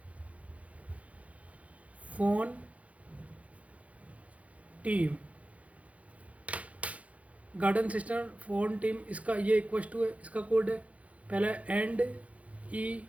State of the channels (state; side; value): late; left; 0.066 ms